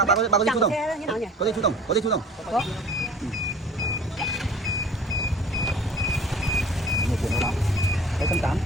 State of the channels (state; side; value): normal; both; correlation 0.45